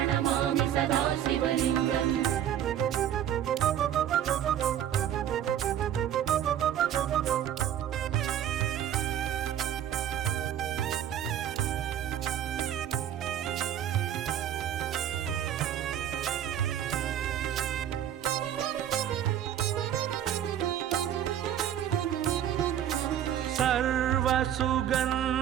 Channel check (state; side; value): quieter; left; 10.5 dB